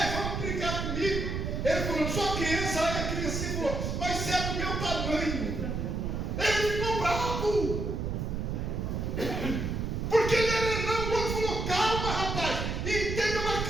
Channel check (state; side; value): noise; right; rumble, 2 dB below the sound